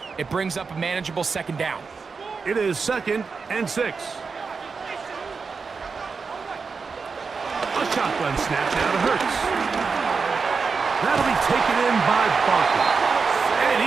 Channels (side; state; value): left; quieter; 5.0 dB